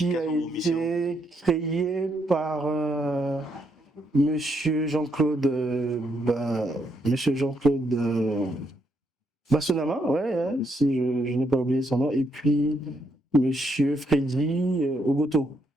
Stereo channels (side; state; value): both; normal; correlation 0.76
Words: a été créée par Monsieur Jean-Claude Bassonama, ouais, hein, si je n'ai pas oublié son nom, et puis Monsieur Freddy Ogoto.